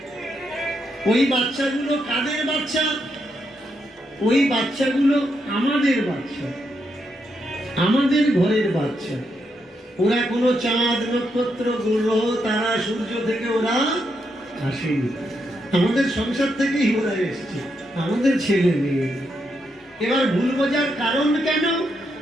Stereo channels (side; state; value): both; normal; correlation 0.81